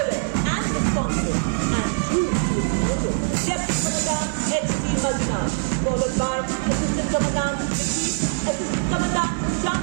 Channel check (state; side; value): silent; left; 56 dB below the other